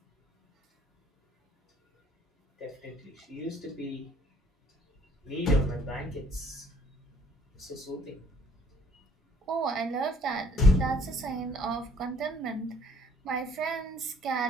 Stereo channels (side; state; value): both; normal; correlation 0.60